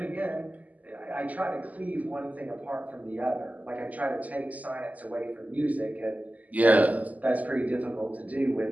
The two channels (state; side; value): late; left; 0.077 ms